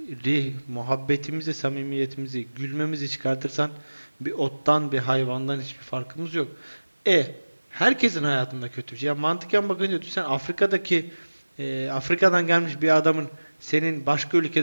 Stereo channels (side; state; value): both; inverted; correlation -1.00